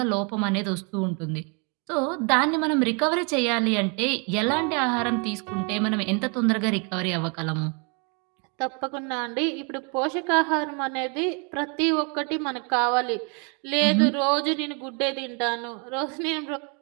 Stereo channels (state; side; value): quieter; left; 35.2 dB